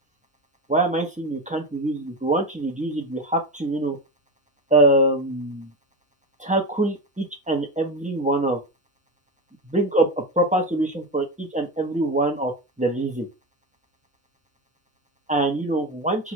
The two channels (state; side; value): normal; both; correlation 0.19